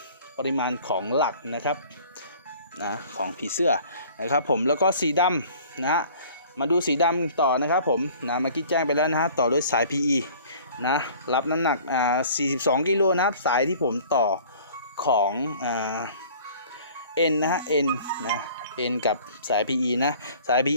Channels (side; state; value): both; inverted; correlation -0.50